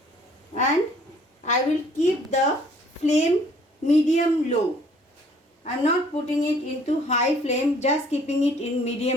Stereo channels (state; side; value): normal; both; correlation 0.58